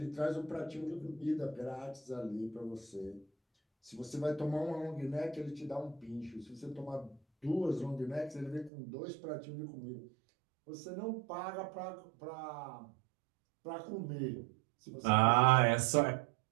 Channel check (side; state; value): left; drops out; at 8.7 s